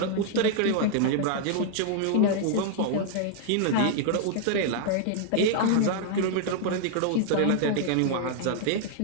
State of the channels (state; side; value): different; both; correlation 0.00